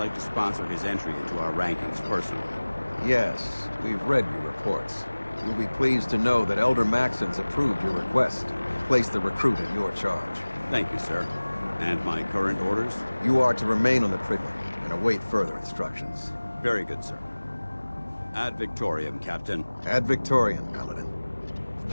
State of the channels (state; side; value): inverted; both; correlation -1.00